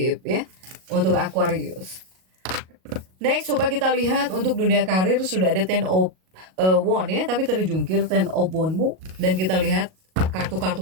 ya untuk Aquarius. Next, coba kita lihat untuk dunia karir sudah ada Ten of wand ya, tapi terjungkir Ten of Wand-mu. Dan kita lihat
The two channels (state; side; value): late; left; 38 ms